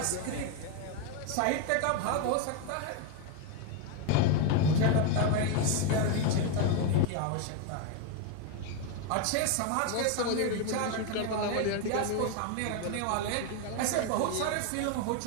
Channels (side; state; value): both; different; correlation 0.02